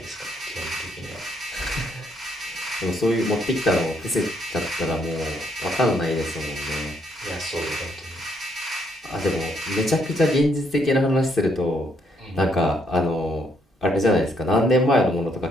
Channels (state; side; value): normal; both; correlation 0.72